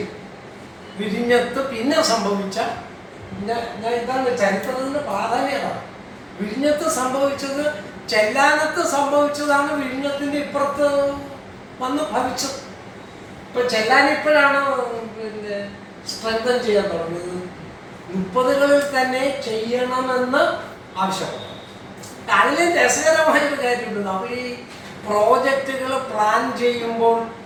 വിഴിഞ്ഞത്ത് പിന്നെ സംഭവിച്ച ഇതാണ് ചരിത്രത്തിന്റെ പ്രാധാന്യത. വിഴിഞ്ഞത്ത് സംഭവിച്ചത് ചെല്ലാനത്ത് സംഭവിച്ചതാണ് വിഴിഞ്ഞത്തിന്റെ ഇപ്പുറത്ത് വന്ന് ഭവിച്ചത്. ഇപ്പൊ ചെല്ലാൻ ഇപ്പോഴാണ് സ്ട്രെങ്തൻ ചെയ്യാൻ തുടങ്ങിയത്. 30കളിൽ തന്നെ ചെയ്യണമെന്ന് ആവശ്യപ്പെട്ടു. അതിൽ രസകരമായൊരു കാര്യമുണ്ട്. നമ്മൾ ഈ പ്രോജക്റ്റുകൾ പ്ലാൻ ചെയ്യുമ്പോൾ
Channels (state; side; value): identical; both; correlation 1.00